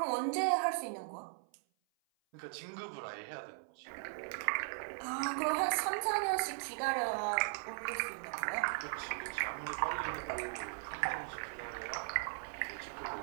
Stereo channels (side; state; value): left; silent; 52 dB below the other